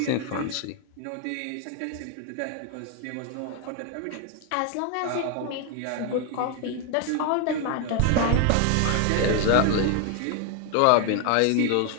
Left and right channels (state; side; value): different; both; correlation 0.00